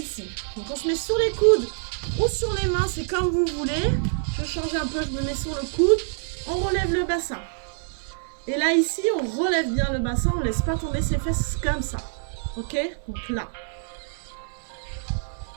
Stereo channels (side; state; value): left; silent; 61 dB below the other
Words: Donc on se met sur les coudes ou sur les mains, c'est comme vous voulez. Je change un peu, je me mets sur le coude. On relève le bassin. Et là ici, on relève bien le bassin, on ne laisse pas tomber ses fesses comme ça. Ok? Donc là.